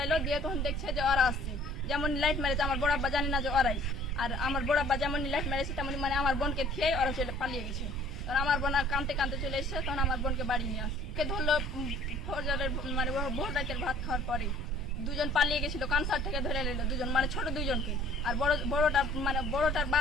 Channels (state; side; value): noise; right; rumble, 10 dB below the sound